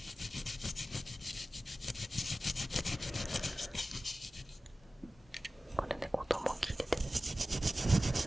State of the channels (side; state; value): both; normal; correlation 0.95